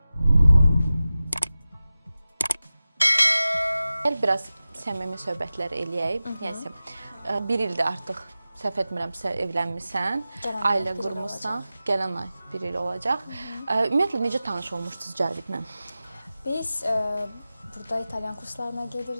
Gəl biraz səmimi söhbətlər eləyək. Yəni 1 ildir artıq səhv etmirəmsə evlənmisən, ailə qurmusan. Gələn ay 1 il olacaq. Ümumiyyətlə necə tanış olmuşdunuz Cavidlə? Biz burada İtalyan kurslarına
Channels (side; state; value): both; inverted; correlation -0.95